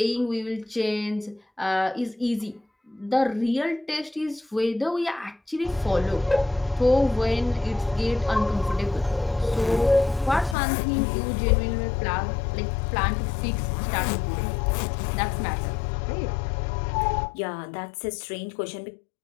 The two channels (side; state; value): right; drops out; at 10.6 s